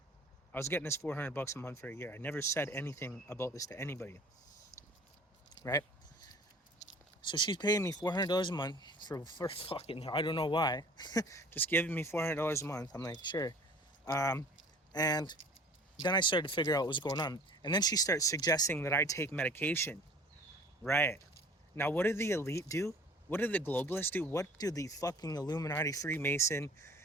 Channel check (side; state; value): both; normal; correlation 0.48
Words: I was getting this $400 a month for a year. I never said anything about this to anybody. Right? So she's paying me $400 a month for fucking, I don't know why. Just giving me $400 a month. I'm like, sure. And then I started to figure out what was going on. And then she starts suggesting that I take medication. Right. Now, what do the elite do? What do the globalists do? What do the fucking Illuminati, Freemason,